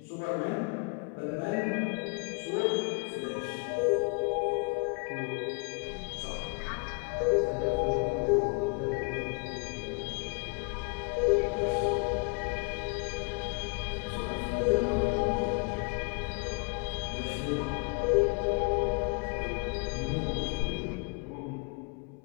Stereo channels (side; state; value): right; quieter; 33.9 dB